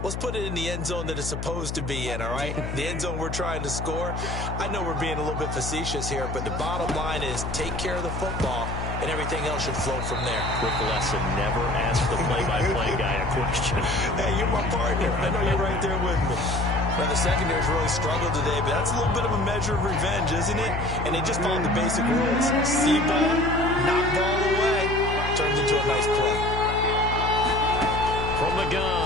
let's put it in the end zone that it's supposed to be in, all right? The end zone we're trying to score. I know we're being a little bit facetious here, but the bottom line is take care of the football, and everything else should flow from there. Quick lesson, never ask the play-by-play guy a question. Hey, you're my partner. I know you're right there with me. Now, the secondary's really struggled today, but that's a little bit of a measure of revenge, isn't it? And they just followed the basic rules. See ball, knock ball away, turns into a nice play. From the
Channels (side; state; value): left; noise; hum, 5 dB below the sound